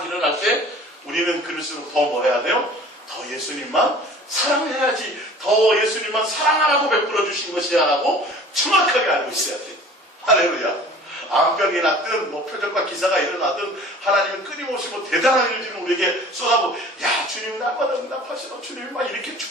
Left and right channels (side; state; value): both; normal; correlation 0.46